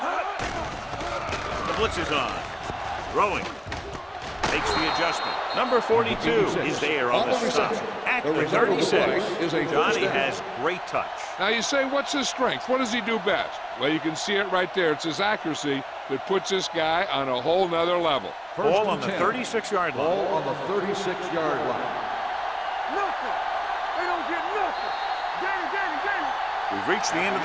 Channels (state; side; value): identical; both; correlation 1.00